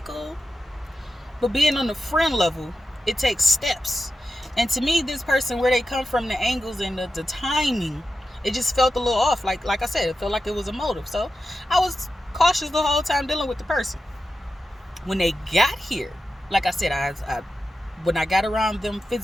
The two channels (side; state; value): both; normal; correlation 0.91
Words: cool. But being on the friend level, it takes steps. And to me, this person, where they come from, the angles and the timing, it just felt a little off. Like I said, it felt like it was a motive. So I was cautious the whole time dealing with the person. When they got here, like I said, when I got around them